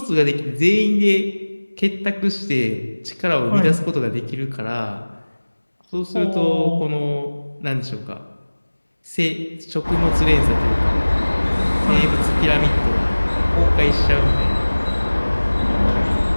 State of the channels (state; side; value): inverted; both; correlation -1.00